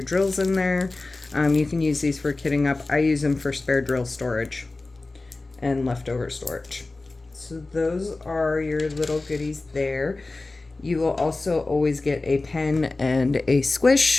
drills in there. You can use these for kitting up. I use them for spare drill storage and leftover storage. So those are your little goodies there. You will also always get a pen and a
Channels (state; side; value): quieter; right; 3.3 dB